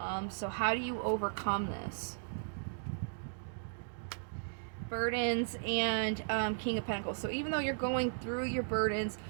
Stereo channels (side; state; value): left; silent; digital silence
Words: So how do you overcome this? Burdens and King of Pentacles. So even though you're going through your burdens,